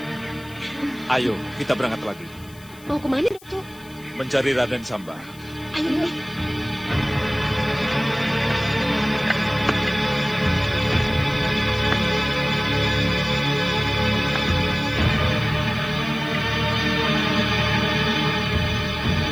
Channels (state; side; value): noise; left; hiss, 24 dB below the sound